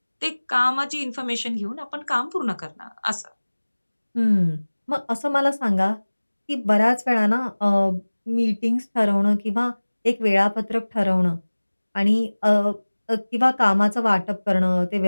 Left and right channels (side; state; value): both; inverted; correlation -1.00